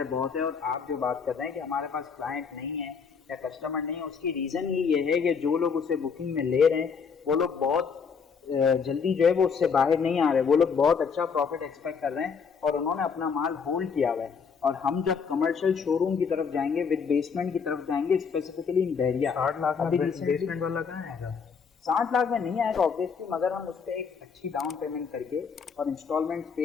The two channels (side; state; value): right; quieter; 6.0 dB